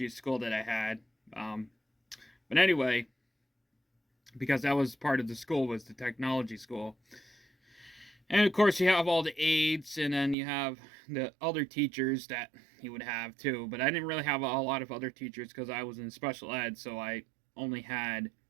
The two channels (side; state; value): left; drops out; at 10.4 s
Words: school that I had. But anyway, because that was part of the school, was the technology school. And of course you have all the aides, and then you have the other teachers that you would have too. But I didn't really have a lot of other teachers because I was in special ed, so I only had